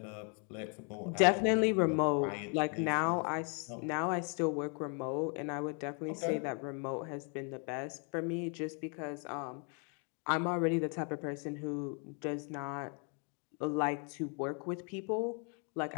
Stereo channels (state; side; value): quieter; right; 39.1 dB